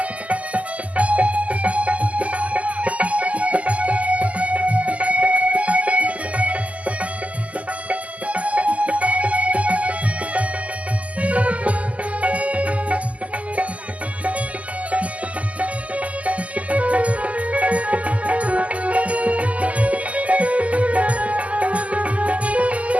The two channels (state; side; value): late; left; 0.069 ms